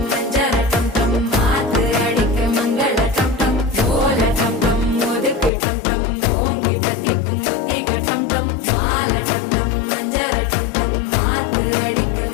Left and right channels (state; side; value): drops out; right; at 5.5 s